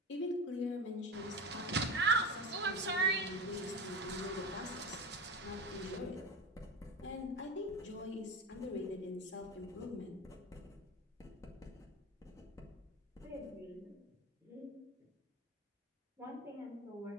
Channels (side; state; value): both; normal; correlation 0.24